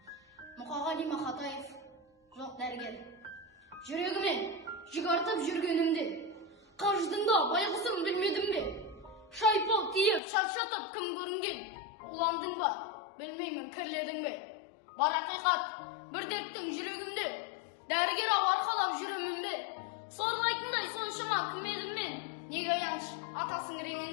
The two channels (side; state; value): right; drops out; at 10.2 s